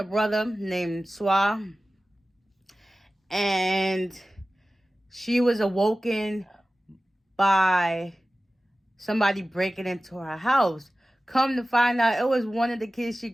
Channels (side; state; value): both; normal; correlation 0.96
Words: brother named S1XE1, and she was awoken by somebody breaking into her house. Come to find out, it was one of the kids she